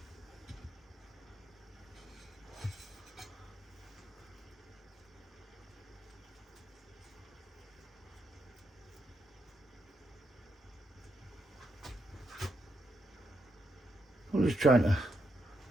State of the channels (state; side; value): normal; both; correlation 0.80